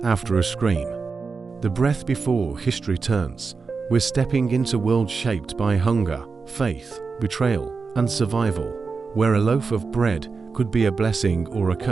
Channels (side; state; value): left; quieter; 4.7 dB